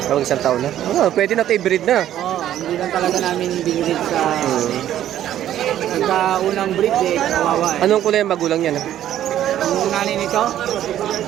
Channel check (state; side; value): quieter; left; 11.8 dB